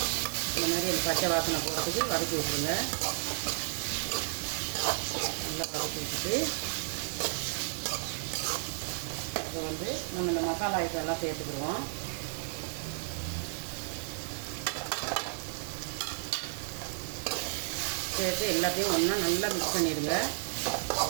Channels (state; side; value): silent; left; digital silence